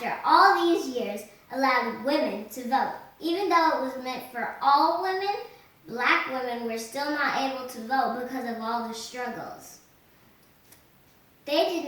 all these years, allowed women to vote. Even though it was meant for all women, black women were still not able to vote because of all the struggles. They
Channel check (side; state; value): both; identical; correlation 1.00